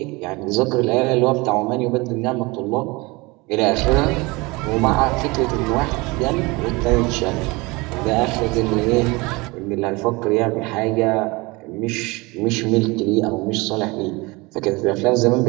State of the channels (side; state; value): left; quieter; 24.5 dB